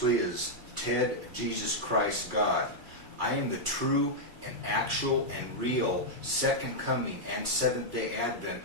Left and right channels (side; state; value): left; late; 2.3 ms